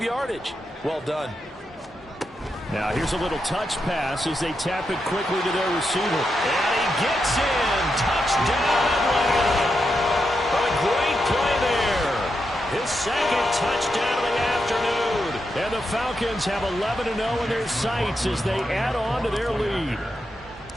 yardage. Well done. Now here's a little touch pass as they tap it quickly to their receiver. And he gets in. Touchdown, Atlanta. A great play there. His second touchdown of the afternoon. And the Falcons have 11-0 in their sights as they add on to their lead.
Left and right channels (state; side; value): normal; both; correlation 0.85